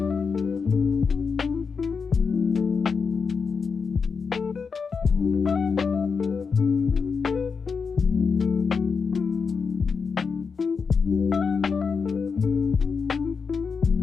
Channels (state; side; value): quieter; right; 5.4 dB